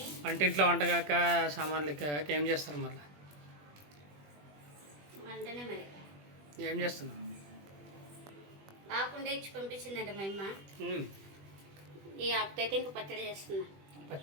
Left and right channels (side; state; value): left; late; 20 ms